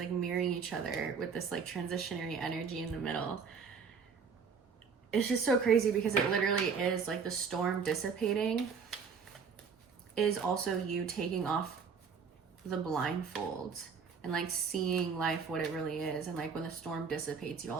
mirroring each other with this like transitionary energy in the middle. It's just so crazy because it literally is like the storm dissipating is also you taking off the blindfold and like seeing life what it really is. And like when the storm dissipates, you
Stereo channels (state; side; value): quieter; left; 5.9 dB